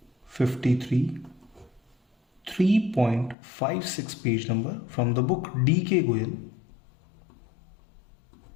53 3.56 page number from the book D.K. Goyal.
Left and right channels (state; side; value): drops out; right; at 3.4 s